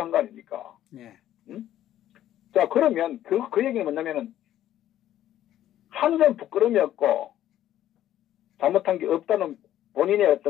거 아닙니까? 예. 응? 자, 그러면 그 얘기는 뭐냐면은 한 점 부끄러움이었고 잘못한 게 없다는 본인의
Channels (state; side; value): quieter; right; 12.3 dB